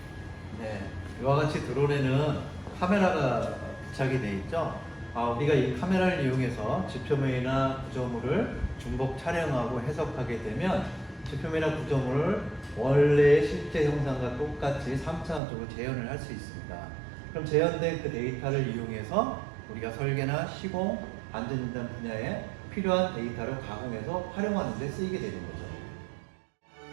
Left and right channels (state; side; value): drops out; left; at 15.4 s